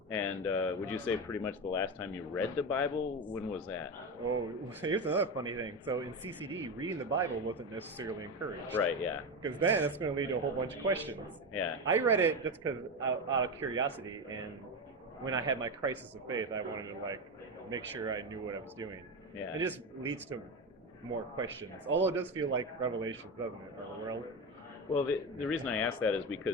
And would you say pretty much the last time you read the Bible? When was that? Oh, here's another funny thing. So in CCD, reading the Bible wasn't necessarily encouraged. Right. Yeah. Because then it's going to lead to a whole bunch of questions. Yeah. I read it just because out of curiosity, and when I had my crisis of faith, I wanted to like make sure I knew what I was doing. Yeah. It just leads to more questions. Although it does feel like Revelation, doesn't it? Or Well, the reason I ask that is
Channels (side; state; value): both; normal; correlation 0.17